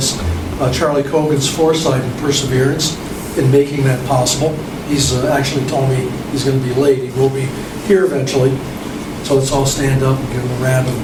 Charlie Cogan's foresight and perseverance in making that possible. He's actually told me he's going to be late. He will be here eventually. So let's all stand up and give him a round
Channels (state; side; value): identical; both; correlation 1.00